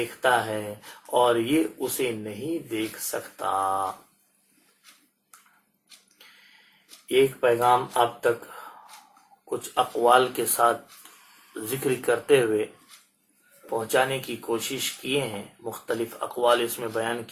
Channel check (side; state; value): both; identical; correlation 1.00